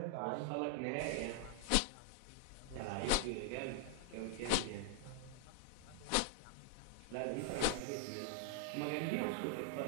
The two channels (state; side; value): different; both; correlation 0.00